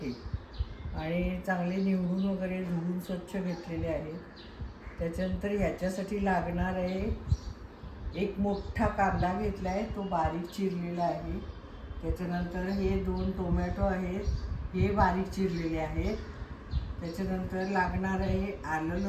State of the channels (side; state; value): both; identical; correlation 1.00